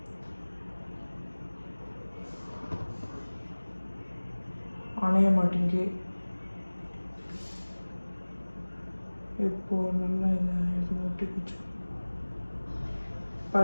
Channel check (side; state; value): both; inverted; correlation -1.00